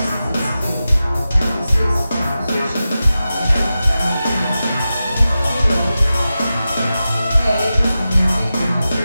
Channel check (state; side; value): inverted; both; correlation -0.93